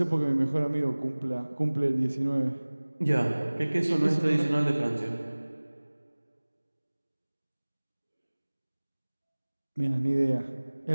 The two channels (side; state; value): both; inverted; correlation -1.00